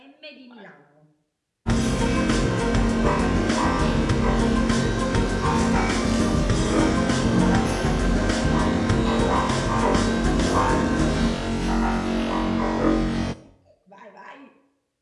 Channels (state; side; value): identical; both; correlation 1.00